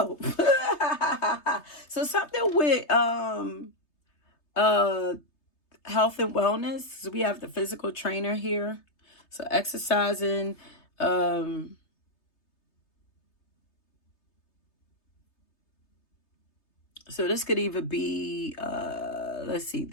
go. So something with health and wellness. So we have the physical trainer here. So exercising, so this could either be, let's see,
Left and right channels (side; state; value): right; late; 3.3 ms